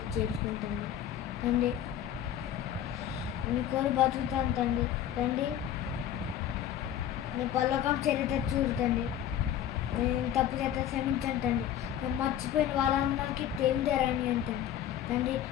చేసుకుంటండి తండ్రి. మీ కోరి బతుకుతాం తండ్రి. తండ్రి నేను పల్లకం చరిత్ర చూడండి. నేను తప్పు చేత క్షమించండి తండ్రి. నేను మర్చిపోయిన వాళ్ళందరికీ తెలియదేరని అంటండి తండ్రి.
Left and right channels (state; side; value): quieter; right; 10.7 dB